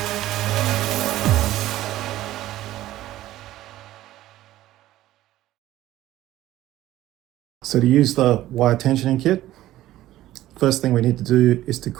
So to use the wire tensioning kit, first thing we need to do is to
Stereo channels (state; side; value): quieter; left; 14.7 dB